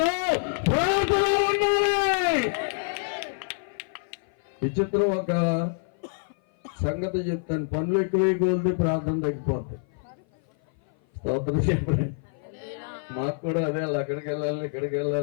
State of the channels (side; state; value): right; silent; 56 dB below the other